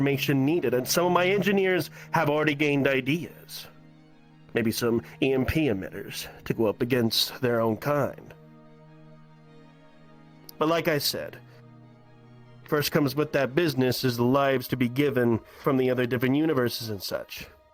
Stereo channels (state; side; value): identical; both; correlation 1.00